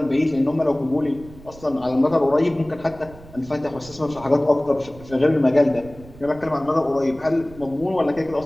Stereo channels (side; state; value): right; noise; rumble, 19 dB below the sound